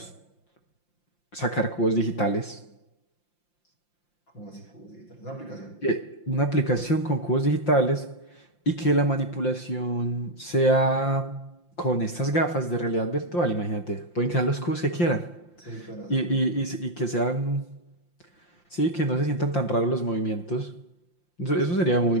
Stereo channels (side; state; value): right; late; 5.8 ms